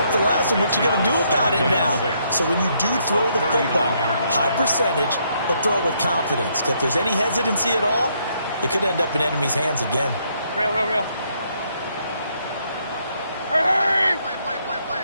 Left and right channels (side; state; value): both; inverted; correlation -0.72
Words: the last one. What you going to do about it now? So when you do throw the football, high percentage, but throw it with confidence. Because if there's any hesitancy at all, it could end up in enemy's hands again. Real. Hurry!